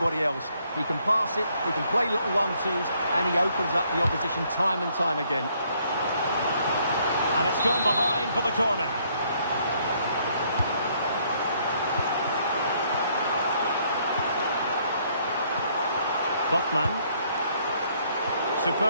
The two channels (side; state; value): both; inverted; correlation -0.67